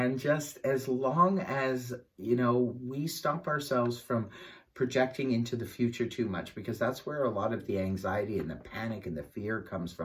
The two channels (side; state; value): both; identical; correlation 1.00